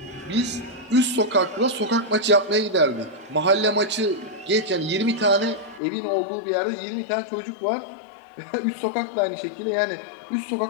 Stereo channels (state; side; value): drops out; right; at 5.8 s